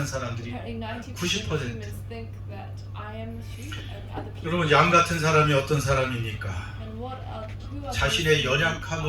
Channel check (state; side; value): identical; both; correlation 1.00